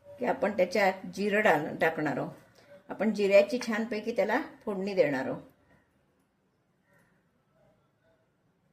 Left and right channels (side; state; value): both; identical; correlation 1.00